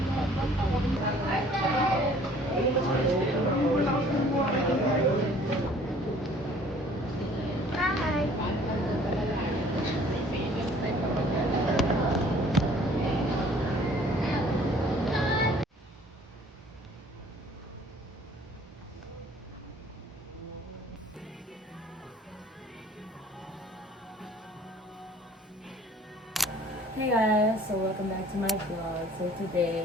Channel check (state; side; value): normal; both; correlation 0.54